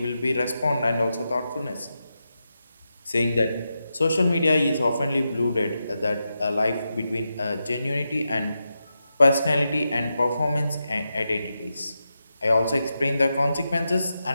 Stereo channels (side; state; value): both; inverted; correlation -0.88